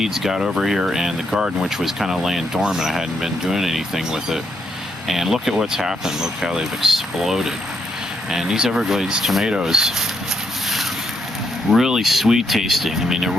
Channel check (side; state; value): both; normal; correlation 0.78